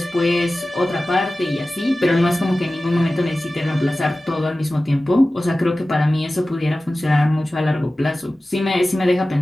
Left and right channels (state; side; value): normal; both; correlation 0.96